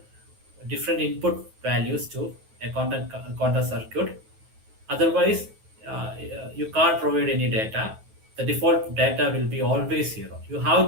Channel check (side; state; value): left; late; 9.3 ms